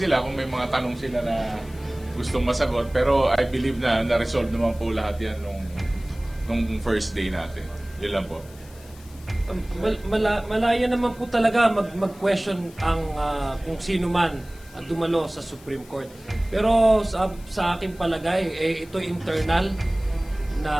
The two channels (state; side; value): noise; left; hiss, 24 dB below the sound